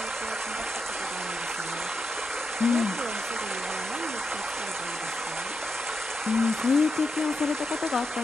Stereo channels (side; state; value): both; normal; correlation 0.85